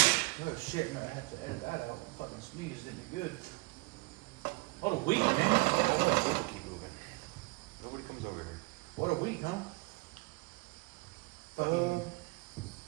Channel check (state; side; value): quieter; left; 25.0 dB